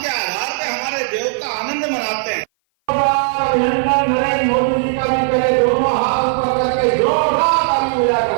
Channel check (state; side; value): silent; left; 57 dB below the other